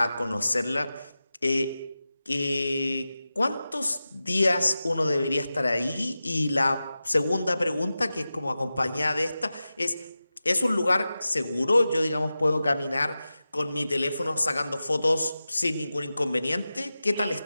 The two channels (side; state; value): both; inverted; correlation -0.94